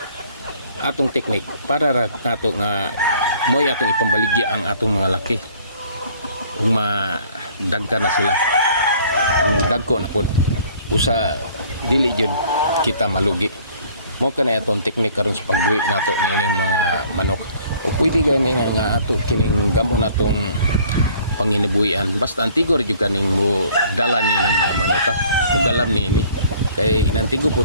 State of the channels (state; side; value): inverted; both; correlation -0.55